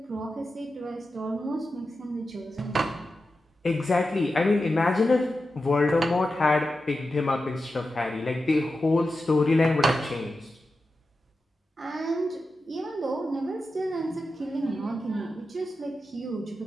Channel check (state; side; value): normal; both; correlation 0.91